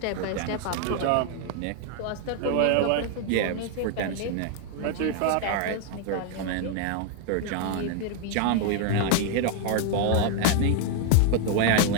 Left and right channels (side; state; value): both; different; correlation 0.00